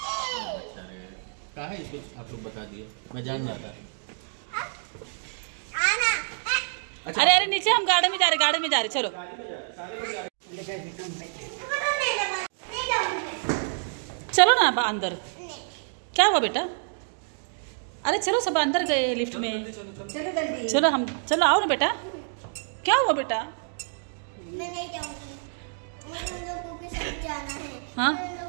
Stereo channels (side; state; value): left; silent; digital silence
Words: कहा है इसको आप लोग बता दिए मैं जान रहा था. अरे अरे नीचे हम गार्डन में जा रहे चलो. चलो ना अंदर. क्या हुआ बेटा? अरे चलो सब अंदर गए लिफ्ट में. चलो हम चलो आओ ना बेटा. क्या हुआ बेटा? मैं नहीं जाऊंगी. मुझे उन लोगों के साथ जाना है. हाँ? उन